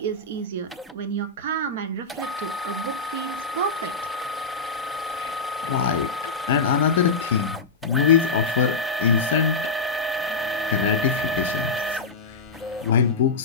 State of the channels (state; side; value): quieter; right; 4.0 dB